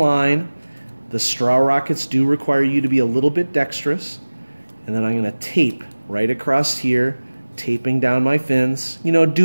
The straw rockets do require you to be a little bit dexterous. And then I'm going to tape right across here, taping down my fins, you know,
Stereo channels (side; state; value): both; inverted; correlation -1.00